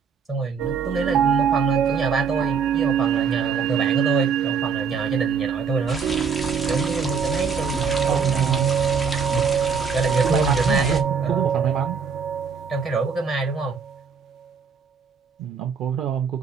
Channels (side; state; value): left; quieter; 6.0 dB